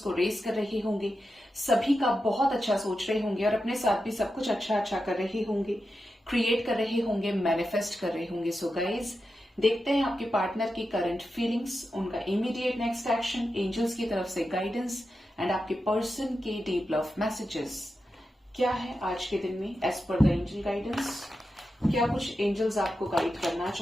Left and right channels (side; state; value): both; normal; correlation 0.90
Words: रेस कर रहे होंगे, सभी का बहुत अच्छा सोच रहे होंगे और अपने साथ भी सब कुछ अच्छा अच्छा कर रहे होंगे, क्रिएट कर रहे होंगे, मैनिफेस्ट कर रहे होंगे। सो गाइज, देखते हैं आपके पार्टनर की करंट फीलिंग्स, उनका इमीडिएट नेक्स्ट एक्शन, एंजल्स की तरफ से गाइडेंस एंड आपके पर्सन के डीप लव मैसेजेस क्या है आज के दिन में as per the angel guidance. क्या कुछ एंजल्स आपको गाइड करना